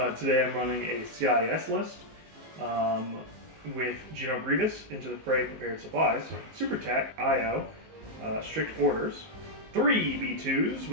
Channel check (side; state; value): left; late; 19 ms